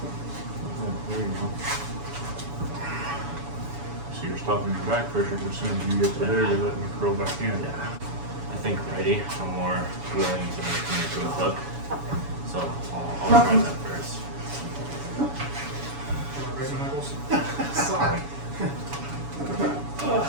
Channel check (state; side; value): late; left; 7.1 ms